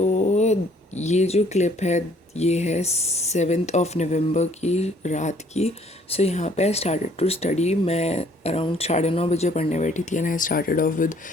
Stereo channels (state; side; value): normal; both; correlation 0.61